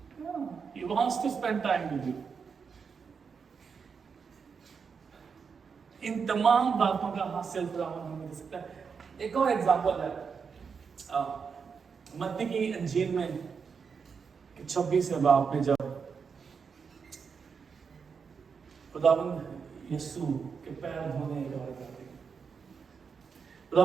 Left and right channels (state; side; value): quieter; left; 5.9 dB